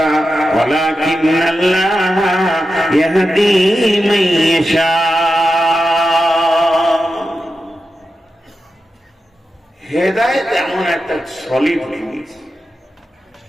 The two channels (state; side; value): normal; both; correlation 0.90